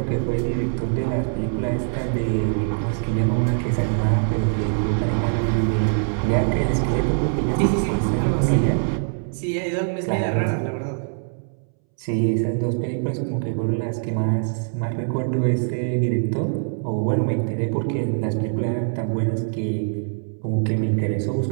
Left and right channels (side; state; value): left; silent; 63 dB below the other